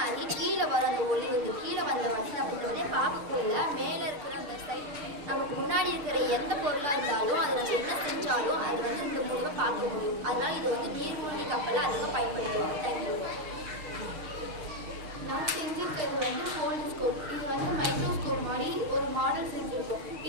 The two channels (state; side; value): late; left; 6.6 ms